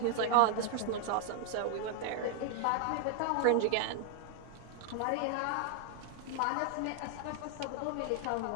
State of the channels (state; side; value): different; both; correlation 0.00